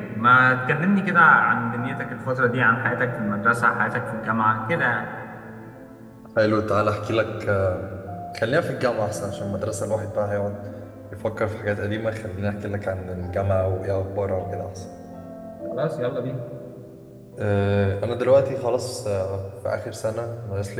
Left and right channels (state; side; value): identical; both; correlation 1.00